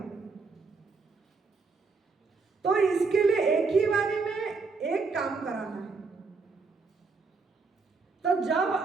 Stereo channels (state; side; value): quieter; left; 4.4 dB